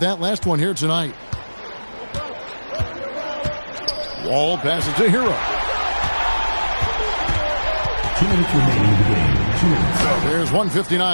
that last one here tonight. Wall passes to Hero. 2 minutes remaining in the game. 2 minutes. There's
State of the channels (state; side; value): inverted; both; correlation -1.00